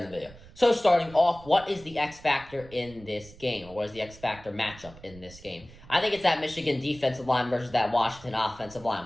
the video. So starting off, what is the X factor in this game? Or what is the X factor matchup in this game? I think it's that Michigan defensive line versus that Washington offensive line.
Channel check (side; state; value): right; noise; rumble, 20 dB below the sound